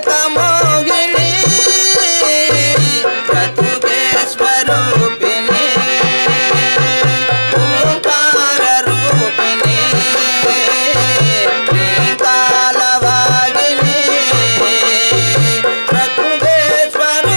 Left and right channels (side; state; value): both; inverted; correlation -1.00